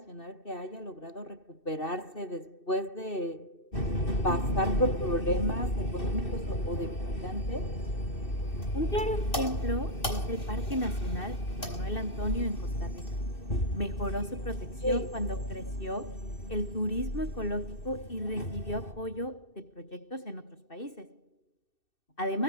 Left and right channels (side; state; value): right; late; 2.6 ms